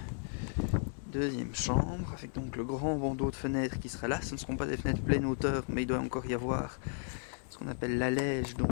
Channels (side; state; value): right; silent; 55 dB below the other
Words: deuxième chambre avec donc le grand bandeau de fenêtres qui sera là. Ce ne seront pas des fenêtres pleine hauteur, mais il doit encore y avoir ce qu'on appelle l'allège,